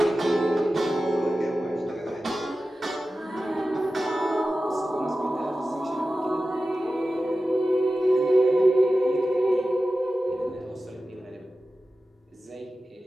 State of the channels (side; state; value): both; normal; correlation 0.94